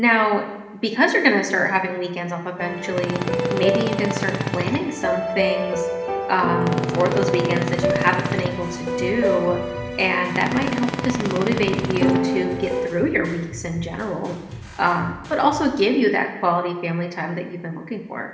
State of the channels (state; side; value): identical; both; correlation 1.00